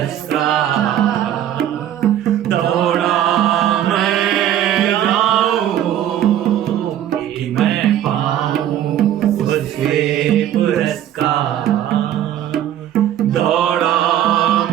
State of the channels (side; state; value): left; quieter; 11.2 dB